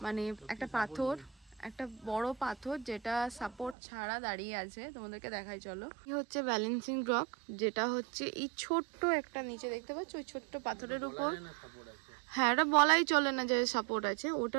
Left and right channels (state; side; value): drops out; left; at 3.8 s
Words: মানে একটা পাথর, একটা বড় পাথর যেটা সাপোর্ট ছাড়া দাঁড়িয়ে আছে। তোমাদেরকে দেখাই চলো। এই হচ্ছে ব্যালেন্সিং রক, যেটা হচ্ছে এই ছোট্ট একটা নিচে দেখতে পাচ্ছ ওই ছোট্ট পাথরের উপর। হ্যাঁ, এটা বলাই চলে না যে সাপোর্ট আছে,